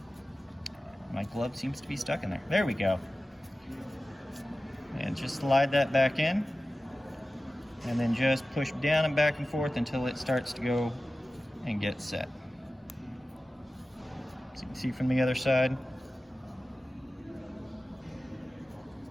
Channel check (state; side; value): normal; both; correlation 0.96